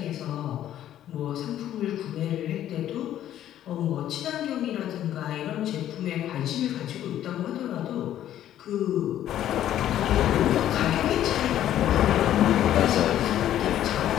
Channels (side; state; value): right; quieter; 11.8 dB